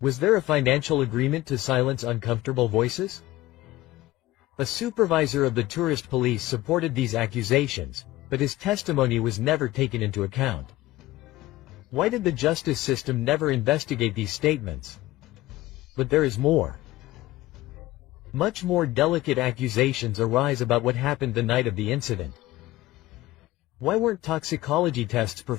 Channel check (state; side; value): quieter; right; 16.9 dB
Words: Was there a financial agreement to silence uncomfortable voices? A supervisor of the tourist police supported these accusations, but his testimony was never taken into account. Why did the justice system never investigate these statements? But there is more. Much more delicate accusations arise about what happened the night of the incident. Why weren't toxicology tests